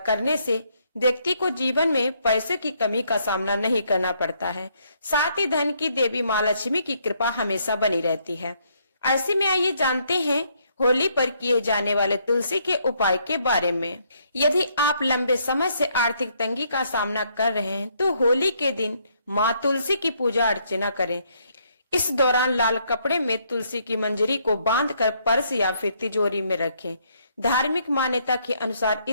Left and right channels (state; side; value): inverted; both; correlation -0.71